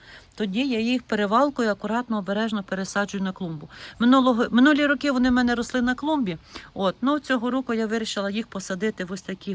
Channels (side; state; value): both; identical; correlation 1.00